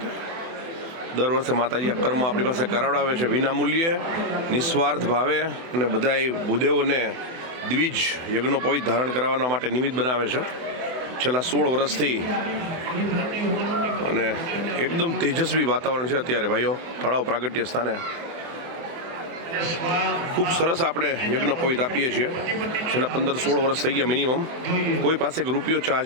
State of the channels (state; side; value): late; left; 24 ms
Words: દર વર્ષે માતાજી આ કર્મ આપણી પાસે કરાવડાવે છે વિના મૂલ્યે, નિસ્વાર્થ ભાવે, અને બધાય ભૂદેવોને દ્વિજ યજ્ઞોપવિત ધારણ કરાવવા માટે નિમિત્ત બનાવે છે છેલ્લા 16 વર્ષથી. અને એકદમ તેજસ્વી વાતાવરણ છે અત્યારે ભાઈઓ તળાવ પ્રાગટ્ય સ્થાને. ખૂબ સરસ આપણે યજ્ઞોપવિત આપીએ છીએ. છેલ્લા 15-16 વર્ષ થઈ ગયા મિનિમમ. કોઈ પાસે એક રૂપિયો